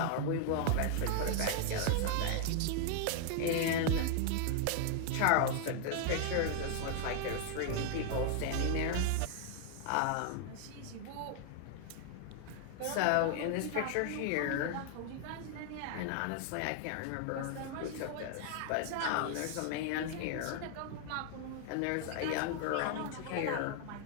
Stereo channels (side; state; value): both; different; correlation 0.00